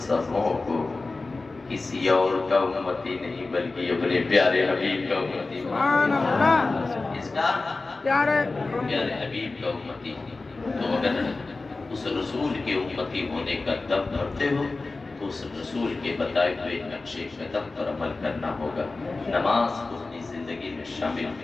سبوں کو کسی اور کا امتی نہیں بلکہ اپنے پیارے حبیب کا امتی بنایا۔ اس کا پیارے حبیب کا امتی۔ تو اگر اس رسول کے امتی ہونے کا دم بھرتے ہو تو اس رسول کے بتائے ہوئے نقش قدم پر عمل کرنا ہوگا، نماز کو اپنی زندگی میں شامل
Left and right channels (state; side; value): quieter; right; 3.5 dB